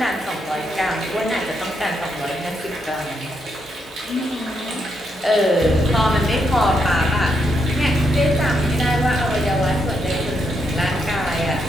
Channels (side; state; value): both; normal; correlation 0.79